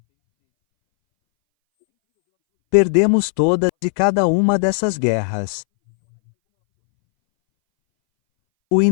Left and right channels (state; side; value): silent; right; 65 dB below the other